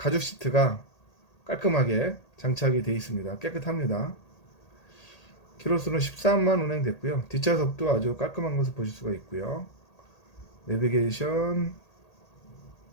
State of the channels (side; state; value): right; late; 1.8 ms